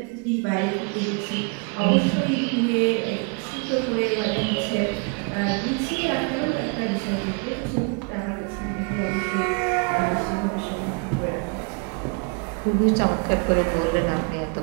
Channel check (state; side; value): quieter; left; 34.6 dB